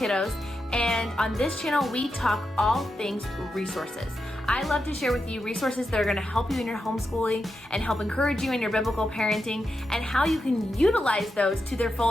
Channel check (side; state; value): both; normal; correlation 0.87